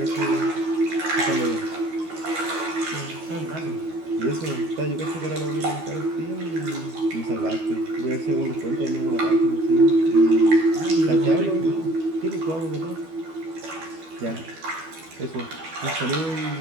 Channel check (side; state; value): left; late; 12 ms